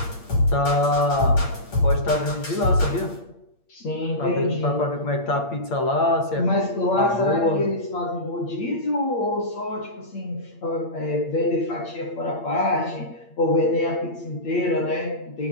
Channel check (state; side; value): late; right; 8.6 ms